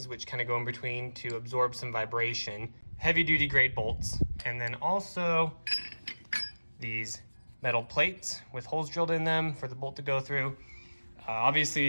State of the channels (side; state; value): both; inverted; correlation -1.00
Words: which kind of go in between to absorb some vibration. Heavy duty grade bolts, and then also these metal plates with holes drilled in them for the bolt to go through.